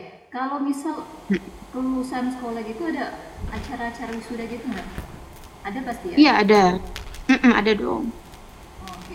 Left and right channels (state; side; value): identical; both; correlation 1.00